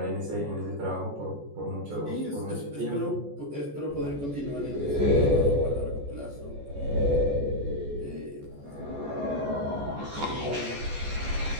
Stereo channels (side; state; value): left; late; 14 ms